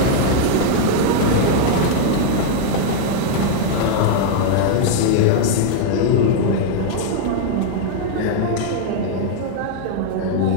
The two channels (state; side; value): different; both; correlation 0.00